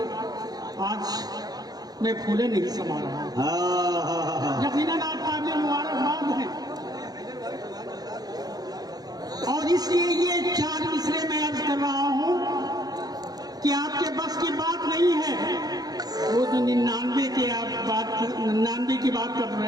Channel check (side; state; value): left; late; 0.19 ms